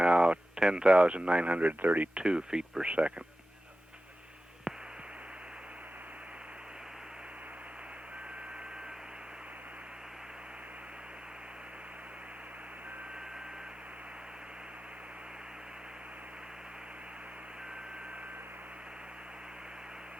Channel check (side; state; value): both; normal; correlation 0.94